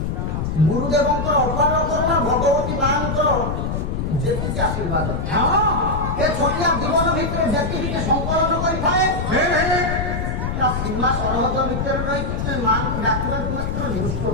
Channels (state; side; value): noise; left; rumble, 2 dB below the sound